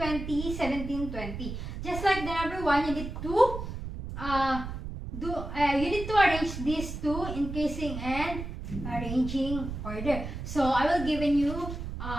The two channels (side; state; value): right; noise; rumble, 7 dB below the sound